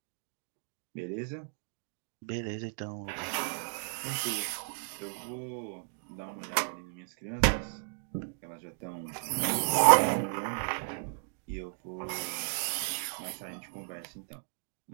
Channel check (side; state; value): left; silent; 55 dB below the other